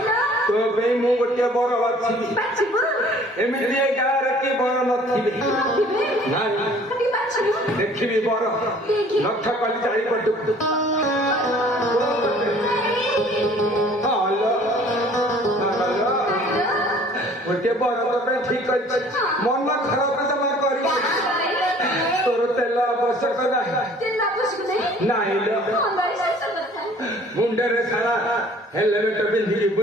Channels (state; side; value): normal; both; correlation 0.53